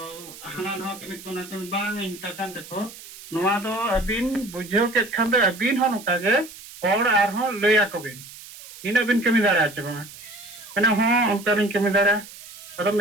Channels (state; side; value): noise; right; hiss, 16 dB below the sound